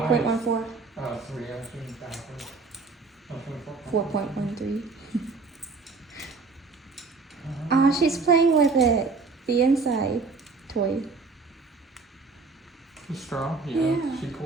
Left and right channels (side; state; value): left; quieter; 4.2 dB